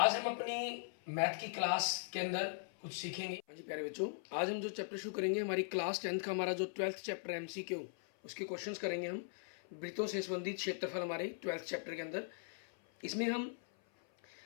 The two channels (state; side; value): silent; right; 51 dB below the other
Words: हम अपनी मैथ की क्लास के अंदर कुछ सीखेंगे। हाँ जी प्यारे बच्चों, आज हम जो चैप्टर शुरू करेंगे, हमारी क्लास 10th का हमारा जो 12th चैप्टर है MCQ, उसके क्वेश्चंस करेंगे हम वृत्तों से संबंधित क्षेत्रफल हमारे 12th चैप्टर के अंदर। इसमें